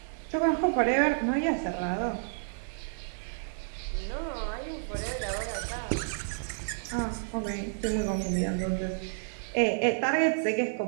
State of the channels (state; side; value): silent; left; digital silence